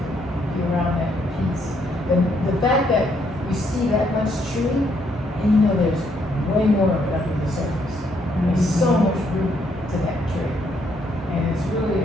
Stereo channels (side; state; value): both; normal; correlation 0.72